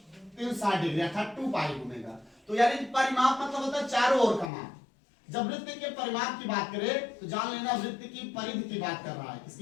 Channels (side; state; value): right; drops out; at 4.5 s